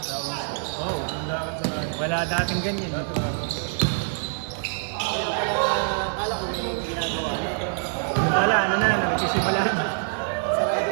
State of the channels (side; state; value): left; silent; digital silence